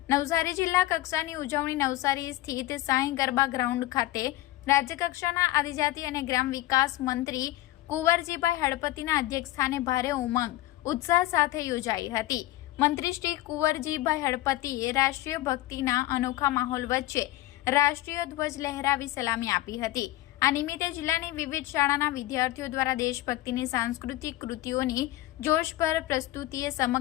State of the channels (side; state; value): right; quieter; 16.6 dB